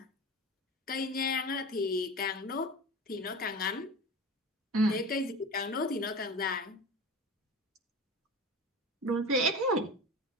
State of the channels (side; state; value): both; normal; correlation 0.31